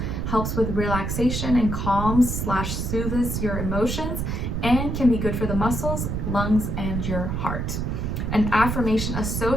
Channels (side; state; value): right; noise; rumble, 2 dB below the sound